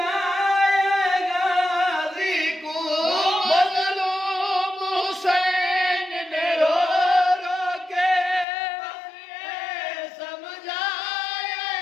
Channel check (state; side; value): drops out; right; at 8.5 s